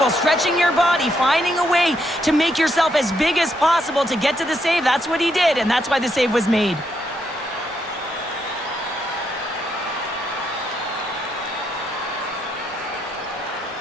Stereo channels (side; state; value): both; normal; correlation 0.77